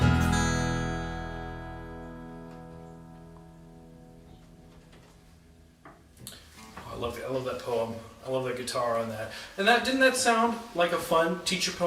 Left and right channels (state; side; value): identical; both; correlation 1.00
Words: I love that poem. I love that guitar on that. And didn't that sound like a fun teacher